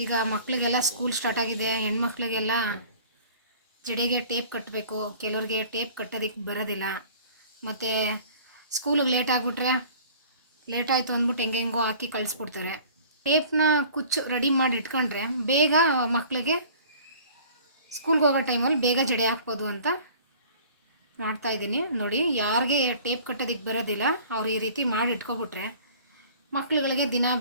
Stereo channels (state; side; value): inverted; both; correlation -0.48